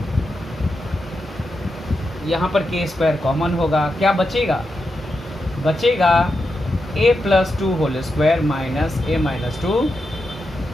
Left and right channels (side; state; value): both; normal; correlation 0.87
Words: यहाँ पर k स्क्वायर कॉमन होगा, क्या बचेगा, बचेगा a plus 2 whole square minus a minus 2